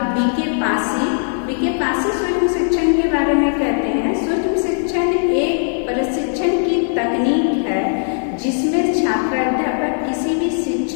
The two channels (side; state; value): right; silent; digital silence